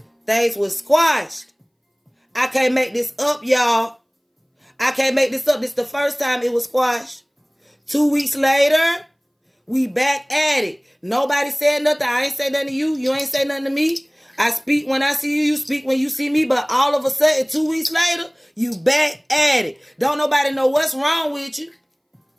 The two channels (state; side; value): identical; both; correlation 1.00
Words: Things was squashed. I can't make this up, y'all. I can't make this up. This is the first time it was squashed. 2 weeks later, We back at it. Nobody said nothing. I ain't say nothing to you. You ain't say nothing to me. I speak when I see you. You speak when you see me. But all of a sudden, 2 weeks later, you back at it. Don't nobody know what's wrong with you.